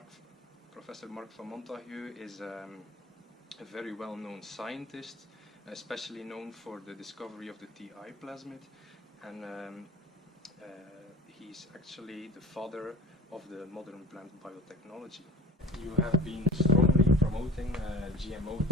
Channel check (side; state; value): both; normal; correlation 0.46